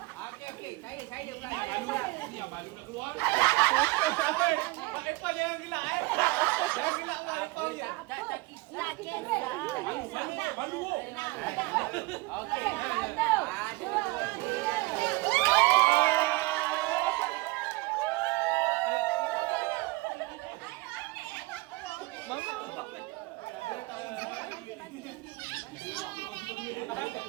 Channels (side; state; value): left; quieter; 22.7 dB